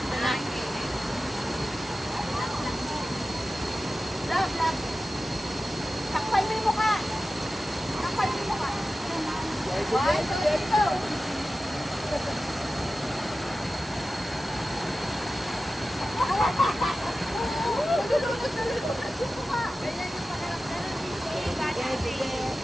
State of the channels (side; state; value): both; normal; correlation 0.94